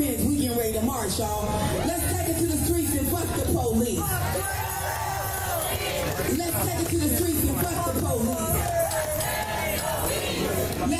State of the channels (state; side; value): identical; both; correlation 1.00